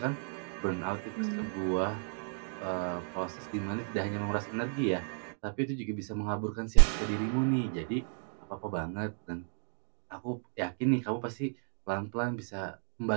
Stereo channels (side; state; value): left; silent; 56 dB below the other